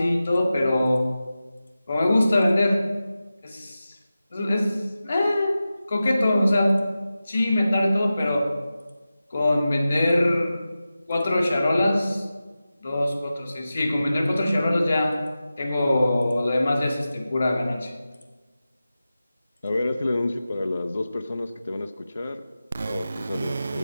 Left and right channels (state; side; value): inverted; both; correlation -0.94